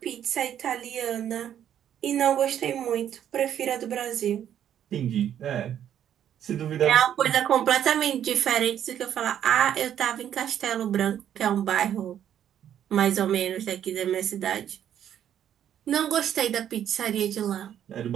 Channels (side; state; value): left; quieter; 10.1 dB